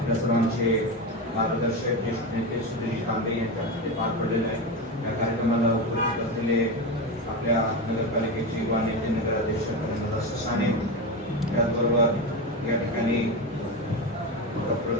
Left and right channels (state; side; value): normal; both; correlation 0.18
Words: सर्वांचे मार्गदर्शक ज्येष्ठ नेते सुधीर तांबे यांच्या हस्ते पार पडलेलं आहे. या कार्यक्रमाला उपस्थित असलेले आपल्या नगरपालिकेचे युवा नेते नगराध्यक्ष ससाने, त्याचबरोबर या ठिकाणी डॉक्टर